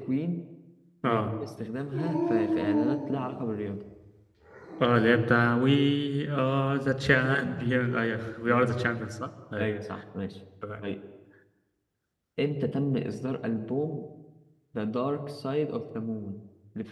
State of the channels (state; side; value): identical; both; correlation 1.00